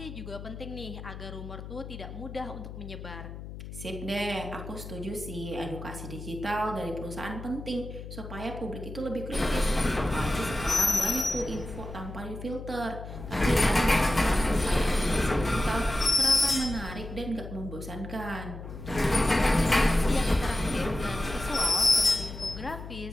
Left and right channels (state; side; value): noise; left; hum, 11 dB below the sound